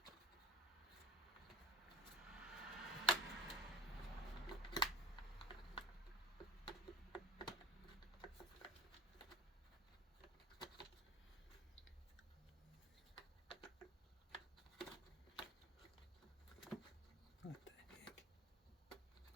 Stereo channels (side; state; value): both; normal; correlation 0.39